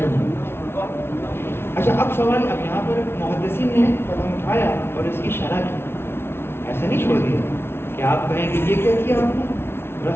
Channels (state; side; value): late; right; 0.12 ms